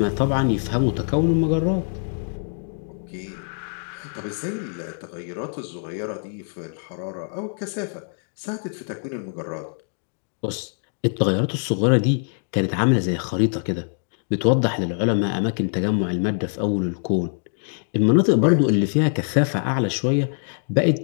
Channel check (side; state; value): right; silent; digital silence